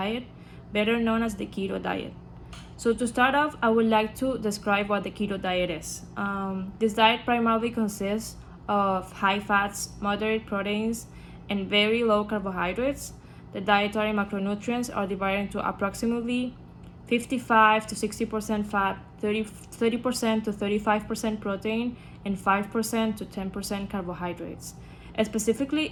better known as the keto diet. So, to start off, I would like to describe what the keto diet is. This diet primarily consists of high fats, moderate proteins, and very low carbohydrates. The dietary macronutrients are divided into approximately 55 to 60% fat, 30% to 35% protein, and 5% to 10% carbohydrates. Specifically,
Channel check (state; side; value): identical; both; correlation 1.00